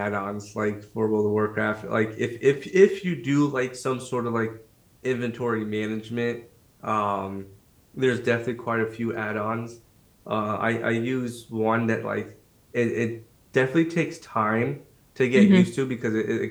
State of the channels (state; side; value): identical; both; correlation 1.00